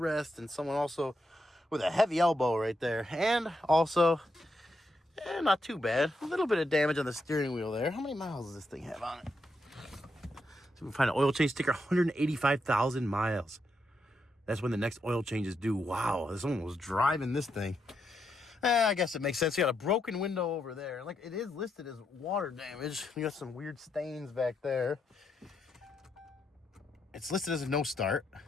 and someone also with a heavy elbow right there, and also not too bad, a little bit of damage on the steering wheel there. How many miles does this thing have on it? So we find an oil change sticker, 185,000 miles. That's when the next oil change is due. Wow, someone was driving this thing. I guess it makes sense. You got a broken window over there. Like, it is listed as water damage. You got some weird stains back there. It's listed as a no start,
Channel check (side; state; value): both; normal; correlation 0.81